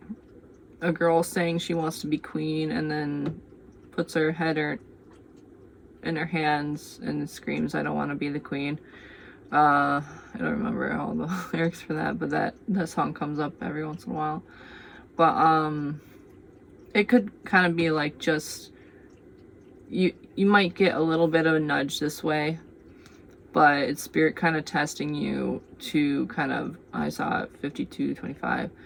girl saying she wants to be queen and then puts her head in her hands and screams, I don't want to be the queen. I don't remember all the lyrics for that, but that song comes up every once in a while. But it could kind of be like, just you might get a little bit of a nudge this way, but it's spirit kind of testing you to kind of, I saw it 5225,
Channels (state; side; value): identical; both; correlation 1.00